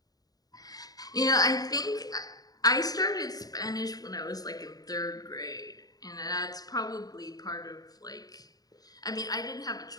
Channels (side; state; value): right; late; 0.18 ms